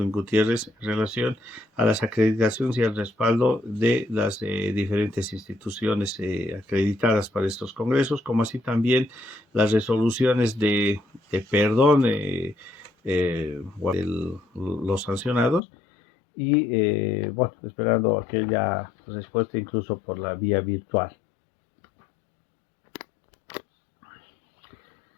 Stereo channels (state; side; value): drops out; right; at 15.6 s